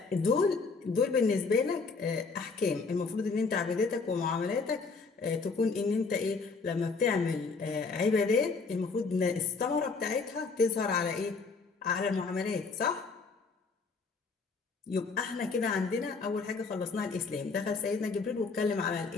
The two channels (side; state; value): right; quieter; 4.4 dB